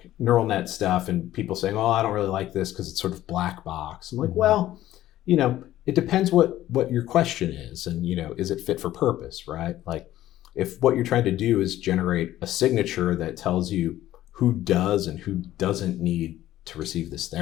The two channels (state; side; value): quieter; right; 13.9 dB